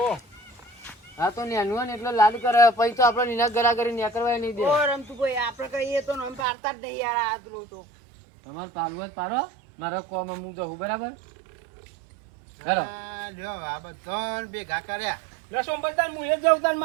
હા તો નેનું હોય ને એટલે લાડ કરે પછી તો આપણે નીના ગરા કરી ન્યા કરવા નહીં દે ઓ રમતું ભાઈ આપણે કહીએ તો નામ પાડતા જ નહીં યાર આ પેલો તો તમારે પાડવું હોય તો પાડો મારા કોમ હું જવું બરાબર હેલો હા, લ્યો આ બધાને ભેગા કર્યા લે સોમભાઈ તાન હું એ જ જાઉં તાન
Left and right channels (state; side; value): drops out; left; at 6.5 s